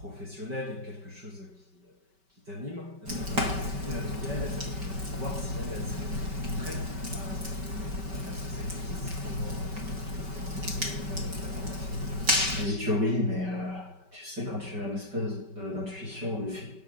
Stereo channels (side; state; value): left; late; 5.2 ms